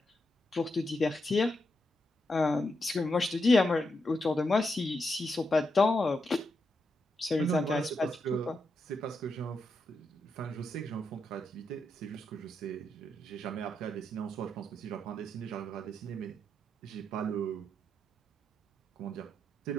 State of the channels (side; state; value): both; normal; correlation 0.83